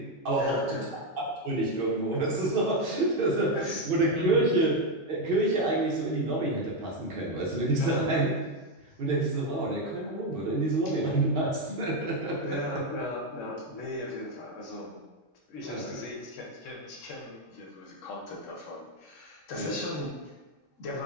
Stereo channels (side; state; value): both; normal; correlation 0.06